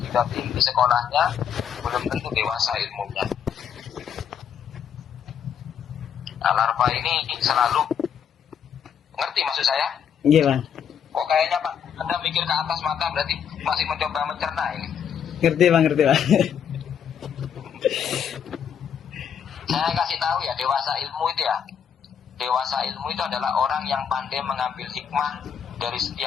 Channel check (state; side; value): quieter; right; 8.1 dB